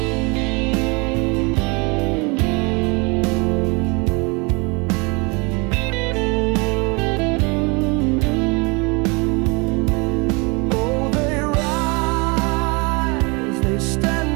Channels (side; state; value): left; quieter; 29.4 dB